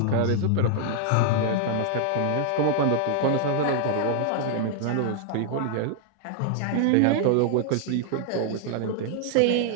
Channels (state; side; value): different; both; correlation -0.01